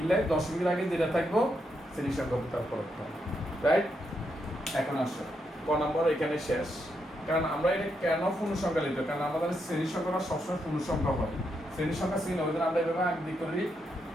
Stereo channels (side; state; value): both; normal; correlation 0.81